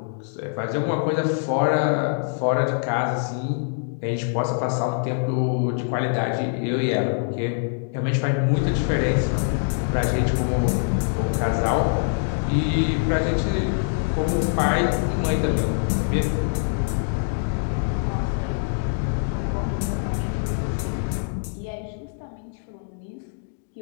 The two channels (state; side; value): silent; right; digital silence